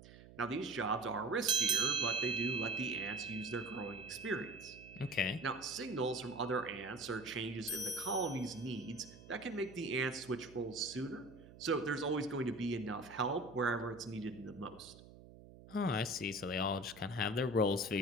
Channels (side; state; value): right; noise; hum, 18 dB below the sound